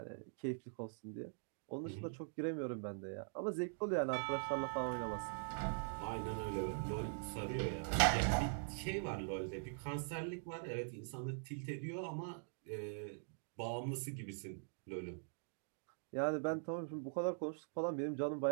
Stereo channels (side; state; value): left; silent; digital silence